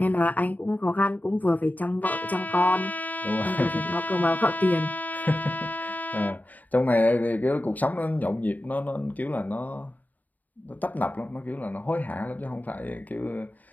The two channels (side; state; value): right; late; 0.080 ms